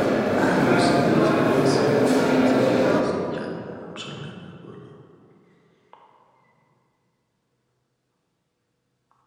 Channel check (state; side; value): identical; both; correlation 1.00